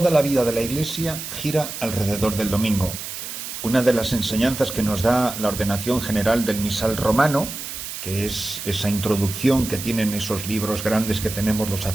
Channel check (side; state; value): right; noise; hiss, 8 dB below the sound